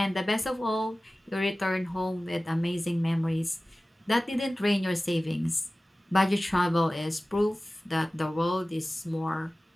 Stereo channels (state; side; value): normal; both; correlation 0.97